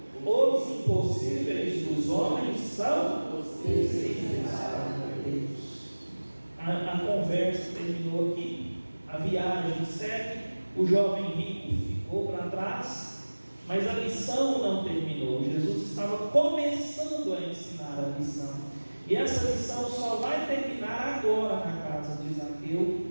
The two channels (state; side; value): inverted; both; correlation -1.00